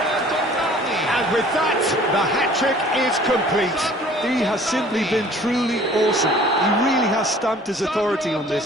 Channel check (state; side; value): normal; both; correlation 0.51